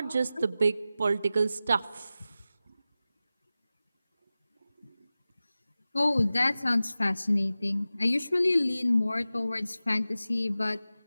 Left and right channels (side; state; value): both; inverted; correlation -0.95